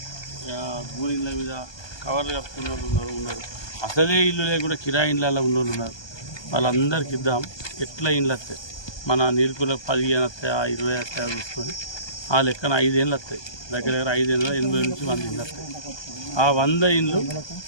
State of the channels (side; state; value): right; late; 1.2 ms